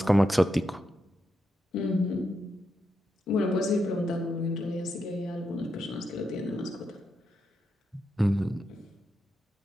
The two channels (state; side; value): normal; both; correlation 0.85